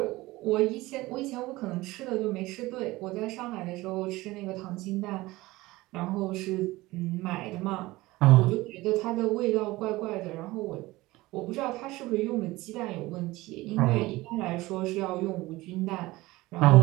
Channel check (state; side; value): quieter; left; 19.5 dB